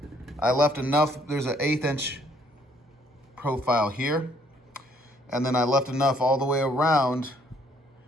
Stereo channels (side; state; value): both; normal; correlation 0.64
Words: I left enough, there's an 1/8 inch profile here, and then I left enough all the way around